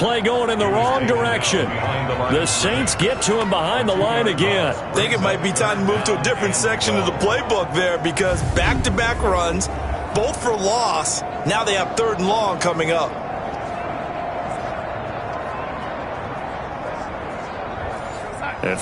going in the wrong direction. The Saints get to him behind the line again. I think it might be time to move to a different section of the playbook there because back-to-back runs, both for loss. Now they have 3rd and long coming up. And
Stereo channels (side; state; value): both; identical; correlation 1.00